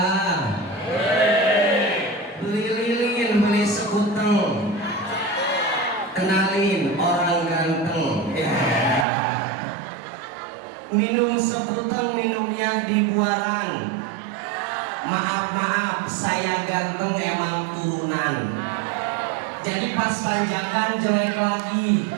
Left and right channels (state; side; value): drops out; left; at 9.1 s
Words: beli lilin, beli sekuteng, kenalin orang ganteng. Minum sekuteng, minumnya di buaran. Maaf, saya ganteng emang turunan. Jadi pas panjangan jelek lagi,